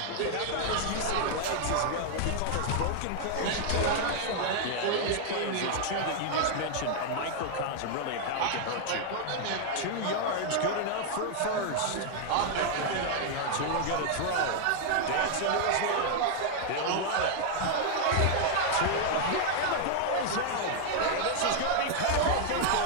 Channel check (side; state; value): both; different; correlation 0.00